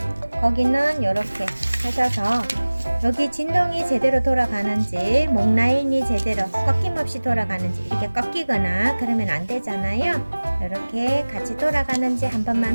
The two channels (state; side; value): inverted; both; correlation -1.00